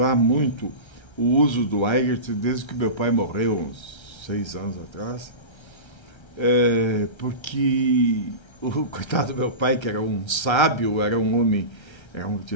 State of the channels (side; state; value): right; late; 1.3 ms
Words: muito o uso do Eigert desde que meu pai morreu, uns 6 anos atrás, porque o coitado do meu pai, que era um sábio, era um homem,